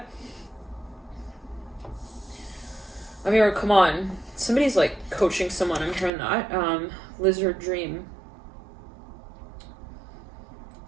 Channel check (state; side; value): drops out; left; at 6.1 s